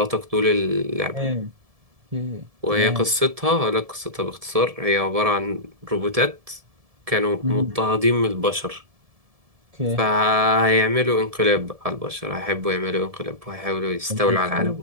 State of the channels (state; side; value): late; left; 1.7 ms